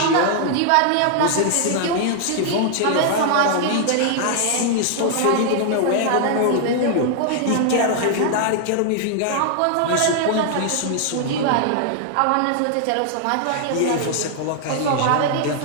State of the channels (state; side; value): different; both; correlation -0.01